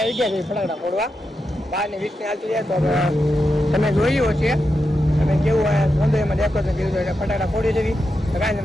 ગયા છે ફટાકડા ફોડવા. 12:20 હાલતી જાય તો તમે જોયું છે તમે કેવું સૌંદર્યમાં ડેકોરેશન કર્યું એટલે ફટાકડા ફોડી દેવી કાંઈ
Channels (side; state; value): both; normal; correlation 0.88